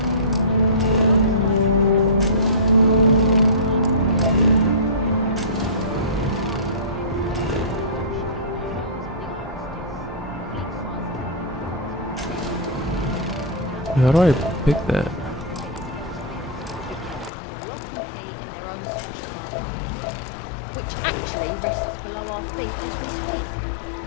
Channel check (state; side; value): drops out; right; at 17.3 s